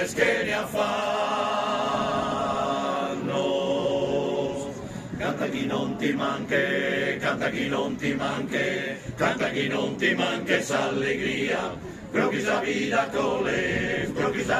que ne affanno. Canta chi non ti manche, canta chi non ti manche, canta chi non ti manca esa allegria, pero quizá vida coles, pero quizá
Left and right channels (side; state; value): both; identical; correlation 1.00